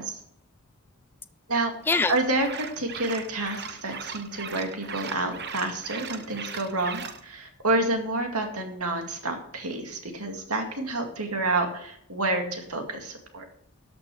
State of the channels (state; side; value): normal; both; correlation -0.13